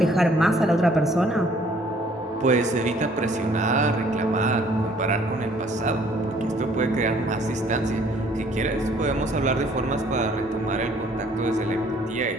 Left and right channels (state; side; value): normal; both; correlation 0.59